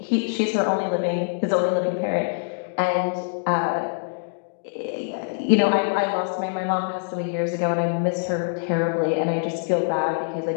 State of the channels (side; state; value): right; silent; digital silence